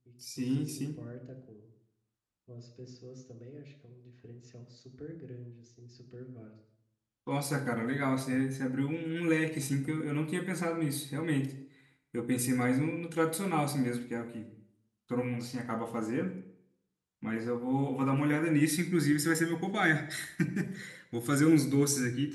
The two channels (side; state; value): both; identical; correlation 1.00